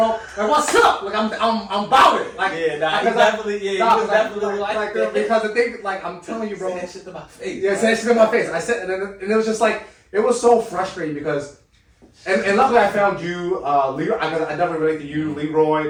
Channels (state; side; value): identical; both; correlation 1.00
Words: Like, what's up? Like, I'm about it. Like, yeah, nah, he definitely, he was definitely like that. Because the thing, like, I'm telling you, bro. Say that shit to my face. Yeah, say that shit to my face. I said, and it was just like, it was so frustrating because, and luckily I found you, Leroy. I definitely relate to you,